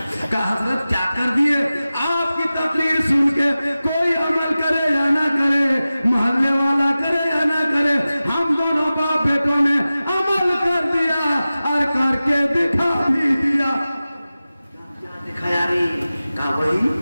कहा हजरत क्या कर दिए? आपकी तकरीर सुन के कोई अमल करे या ना करे, मोहल्ले वाला करे या ना करे, हम दोनों बाप बेटों ने अमल कर दिया और करके दिखा भी दिया। क्या दिखाया रे? कहा वही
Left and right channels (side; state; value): both; inverted; correlation -0.96